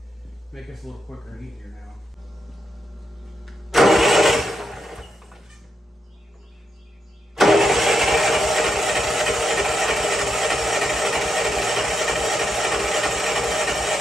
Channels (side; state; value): both; normal; correlation 0.83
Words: Make this a little quicker and easier now.